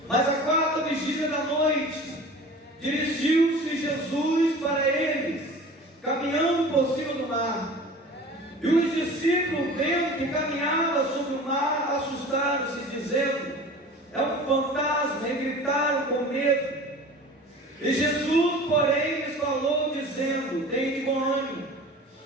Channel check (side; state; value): both; normal; correlation 0.40